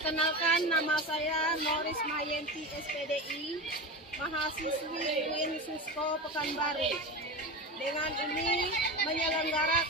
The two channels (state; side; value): normal; both; correlation 0.23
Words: nama saya Noris Mayenti SPDI, mahasiswi UIN Susko Pekanbaru. Dengan ini